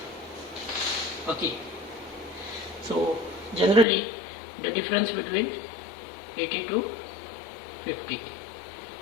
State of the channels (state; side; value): drops out; right; at 3.9 s